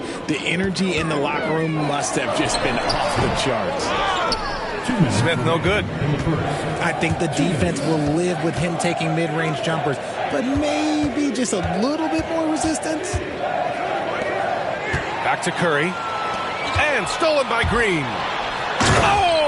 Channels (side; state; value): both; identical; correlation 1.00